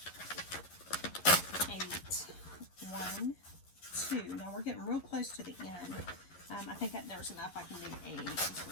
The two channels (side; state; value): right; late; 11 ms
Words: 8. 1, 2. Now we're getting real close to the end. I think that there's enough. I can do 8. So